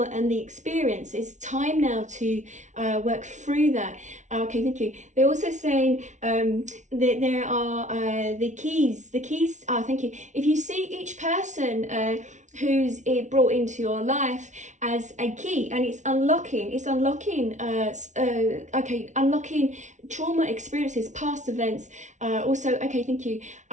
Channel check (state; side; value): late; left; 0.35 ms